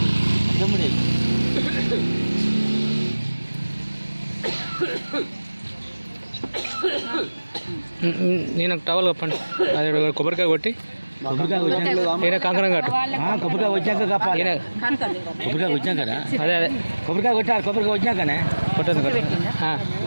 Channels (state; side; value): inverted; both; correlation -1.00